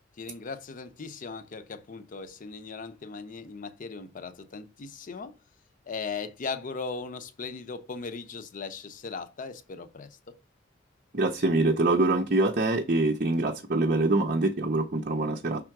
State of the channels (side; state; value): both; normal; correlation 0.39